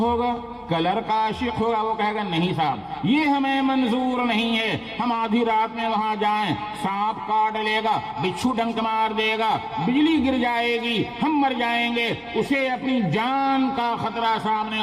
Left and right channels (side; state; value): both; identical; correlation 1.00